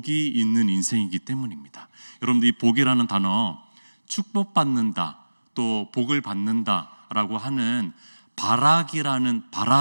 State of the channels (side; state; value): both; inverted; correlation -1.00